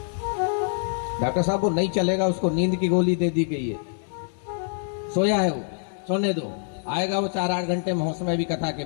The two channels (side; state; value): right; silent; digital silence